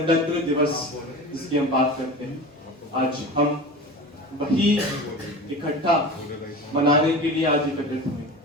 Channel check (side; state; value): both; normal; correlation 0.32